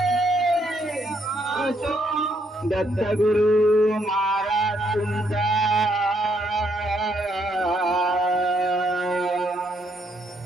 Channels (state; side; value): normal; both; correlation 0.73